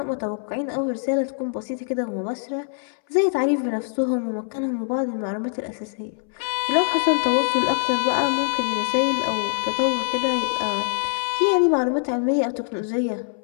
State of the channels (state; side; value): silent; right; 62 dB below the other